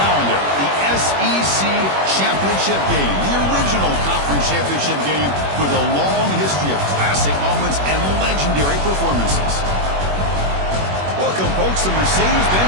the SEC Championship game, the original conference championship game with a long history of classic moments and legendary performances. Welcome, folks, to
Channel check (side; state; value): left; late; 21 ms